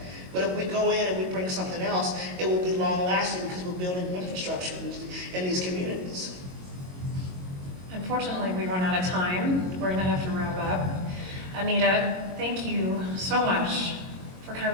But if we go in and we bring something else, it will be long-lasting because we're building infrastructure in these communities. Unfortunately, we've run out of time. We're going to have to wrap up. Anita, thank you so much for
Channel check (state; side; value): late; left; 22 ms